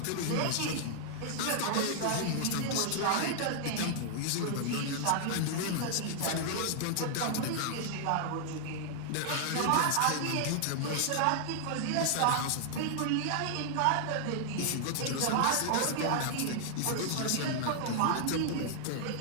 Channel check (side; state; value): both; different; correlation -0.01